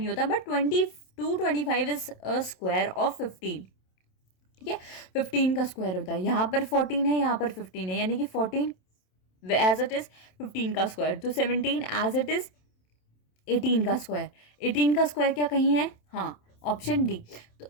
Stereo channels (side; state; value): right; late; 27 ms